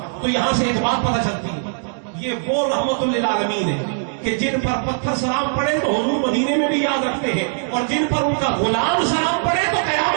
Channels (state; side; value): silent; left; digital silence